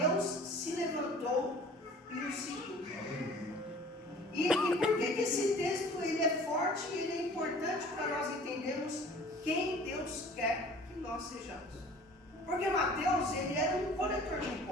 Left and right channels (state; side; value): normal; both; correlation 0.48